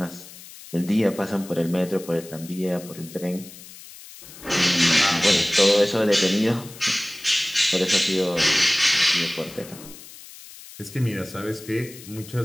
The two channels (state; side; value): noise; left; hiss, 17 dB below the sound